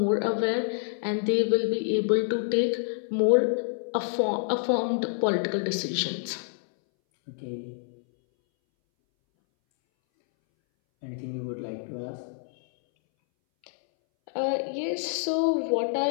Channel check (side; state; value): right; silent; 60 dB below the other